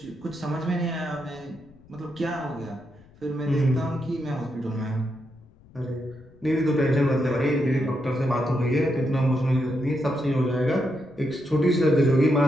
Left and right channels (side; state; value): left; noise; rumble, 26 dB below the sound